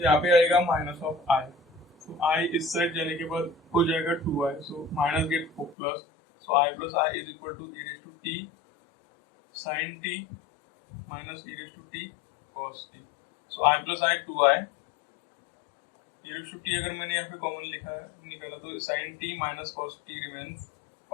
पे आएगा minus of i। So i इस साइड जाने के बाद हो जाएगा 2i, so minus get plus, so i plus i is equal to e raised to t sin t minus e raised to t cos t। So i plus i 2i, e raised to t अगर मैंने यहाँ पे कॉमन लिखा है निकाला तो sin t minus cos t remains।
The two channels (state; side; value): drops out; right; at 5.8 s